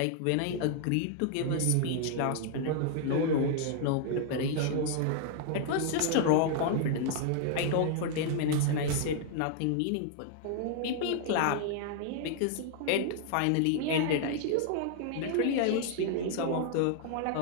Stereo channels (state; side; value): different; both; correlation 0.00